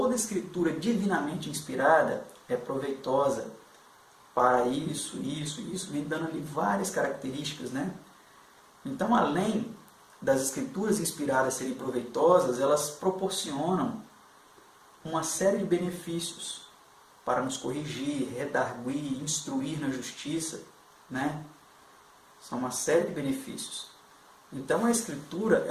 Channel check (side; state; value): both; identical; correlation 1.00